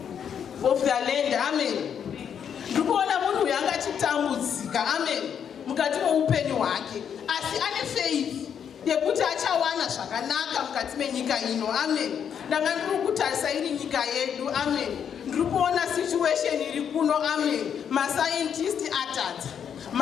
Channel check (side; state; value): right; quieter; 8.1 dB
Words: land. Amen. Ndikuona munhu uyu anga achitambudzika. Amen. Mukati meupenyu hwake, asi ane faith yekuti achawana zvakanaka mukati menyika ino. Amen. Ndanga ndiri kutarisa iri nyika yedu. Amen. Ndiri kuona situation iri kuno. Amen. Mascientist atadza,